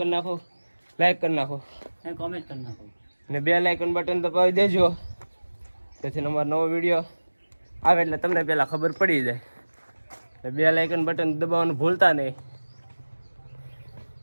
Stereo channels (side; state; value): both; inverted; correlation -1.00